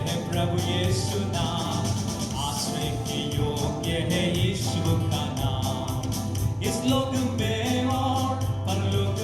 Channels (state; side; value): identical; both; correlation 1.00